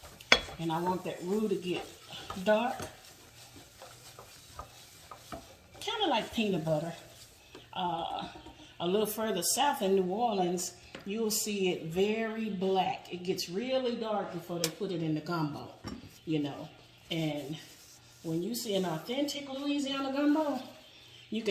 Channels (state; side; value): identical; both; correlation 1.00